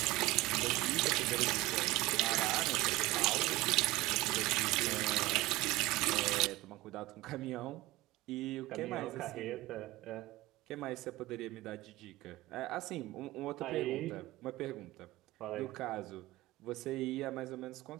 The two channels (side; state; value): left; quieter; 19.1 dB